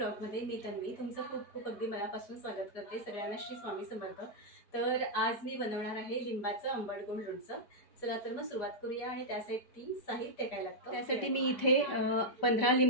मी तन्वी तुमचं खूप खूप अगदी मनापासून स्वागत करते। सगळ्यांना श्री स्वामी समर्थ। तर आज मी बनवणार आहे लिंबाचं आंबट गोड लोणचं। चला तर मग सुरुवात करूया। आणि त्यासाठी साहित्य काय लागतं त्यासाठी मी इथे 15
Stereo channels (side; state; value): right; late; 5.1 ms